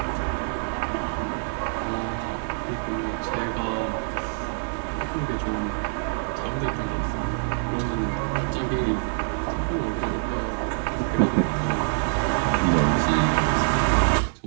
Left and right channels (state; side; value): silent; left; 61 dB below the other